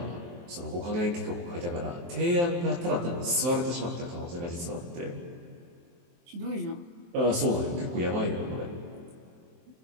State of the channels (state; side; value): late; left; 23 ms